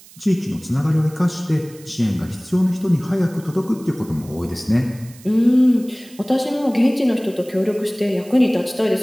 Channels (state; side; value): noise; right; hiss, 22 dB below the sound